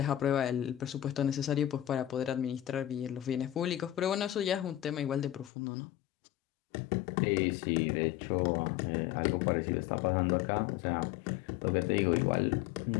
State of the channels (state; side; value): drops out; right; at 5.5 s